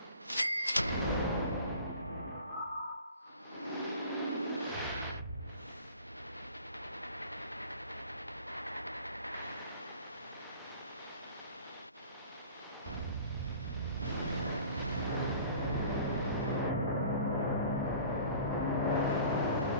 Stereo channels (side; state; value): both; inverted; correlation -0.45